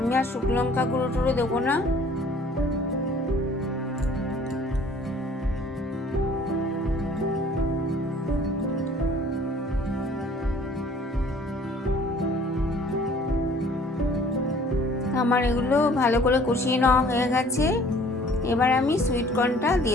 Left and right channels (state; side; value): normal; both; correlation 0.54